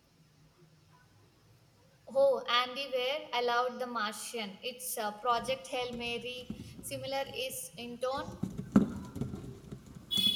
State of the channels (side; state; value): both; identical; correlation 1.00